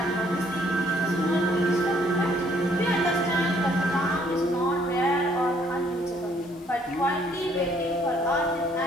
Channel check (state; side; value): normal; both; correlation 0.64